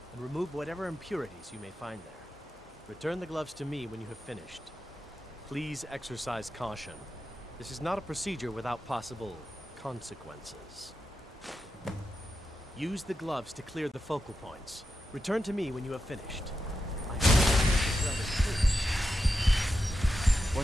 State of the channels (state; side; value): normal; both; correlation 0.89